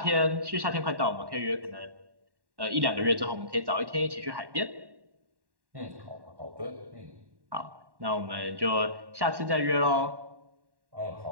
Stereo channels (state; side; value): late; left; 1.1 ms